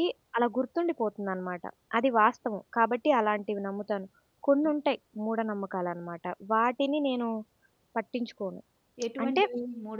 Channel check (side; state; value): both; identical; correlation 1.00